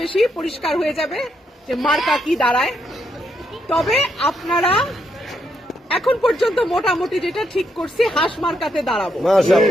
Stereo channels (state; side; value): normal; both; correlation 0.78